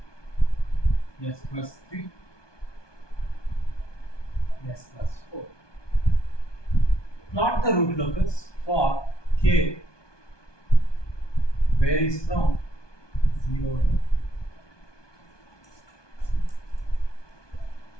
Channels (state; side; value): late; right; 1.2 ms